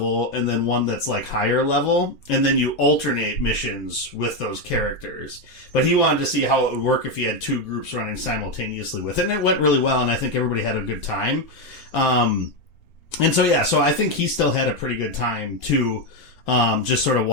and then one that's like higher level, and then you alternate missions with those characters. But he wanted to see how it would work if he had 2 groups running simultaneously with it, and it went really well, and I think everybody had a good time. And so I think he still had a pretty good time too, just sort of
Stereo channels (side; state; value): right; late; 4.3 ms